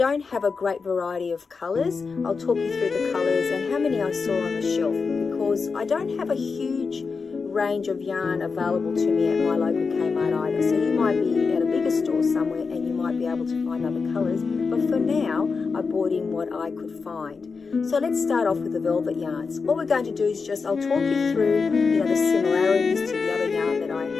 have a great variety of colours. I'll talk you through the colours and how many I saw on the shelf, because I don't have a huge range of yarn available to me at my local Kmart either. So you might be at a bigger store somewhere and you might be able to find other colours, but for now I bought in what I could find. So let's start off with the velvet yarns. What we're going to do is I'll talk you through the similarities to the other yarn that I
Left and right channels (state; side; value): quieter; right; 4.9 dB